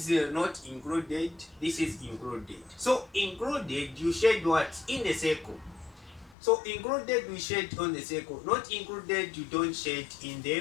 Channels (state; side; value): drops out; right; at 6.4 s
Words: not included, this is included. So included, you shade what? In the circle. So included, we shade on the circle. Not included, you don't shade in